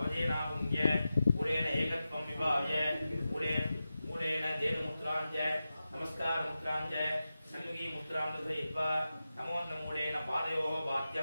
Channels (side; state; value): both; inverted; correlation -0.93